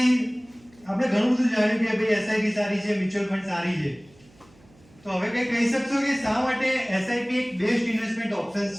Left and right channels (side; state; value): right; noise; hum, 28 dB below the sound